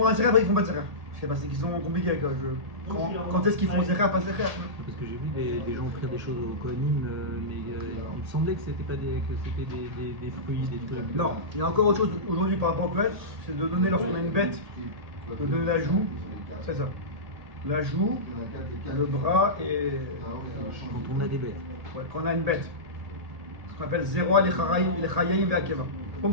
un Zecher, après ils font pas de Zecher. Je sais pas, c'est qu'ils sont compliqués avec quand est-ce qu'ils font Zecher, pas Zecher? Parce que j'ai vu des gens faire des choses au Kohanim, mais il me semblait que c'était pas des fruits, des trucs. Non, il y a encore autre chose aujourd'hui par rapport au Kohen, c'est de donner lorsqu'on a une bête, de donner la joue, c'est ça. La joue, le bras et. Quand on a des bêtes. Ouais, quand on a une bête. Ce qu'on appelle Zeroa, les Chayayim et Akeva. Comme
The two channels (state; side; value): late; left; 1.8 ms